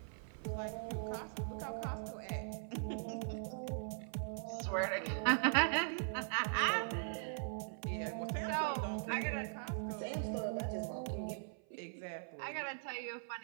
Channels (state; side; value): silent; left; 51 dB below the other